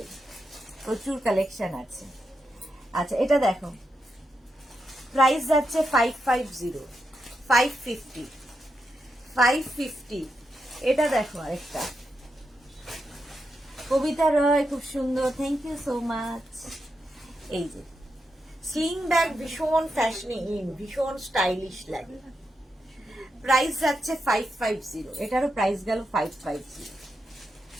প্রচুর কালেকশন আছে। আচ্ছা এটা দেখো, প্রাইস যাচ্ছে 550। এটা দেখো আরেকটা, কবিতা রয়, খুব সুন্দর, থ্যাংক ইউ সো মাচ। এই যে স্লিং ব্যাগ ভীষণ ফ্যাশনি ভীষণ স্টাইলিশ লাগে। প্রাইস যাচ্ছে 550, এটারও প্রাইস গেল 550।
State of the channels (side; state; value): both; normal; correlation 0.85